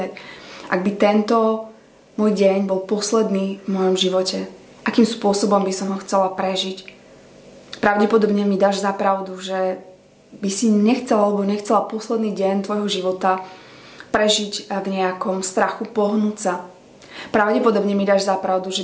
Ak by tento môj deň bol posledný v mojom živote, akým spôsobom by som ho chcela prežiť. Pravdepodobne mi dáš za pravdu, že by si nechcela alebo nechcela posledný deň tvojho života prežiť v nejakom strachu, pohnúť sa. Pravdepodobne mi dáš za pravdu,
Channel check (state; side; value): identical; both; correlation 1.00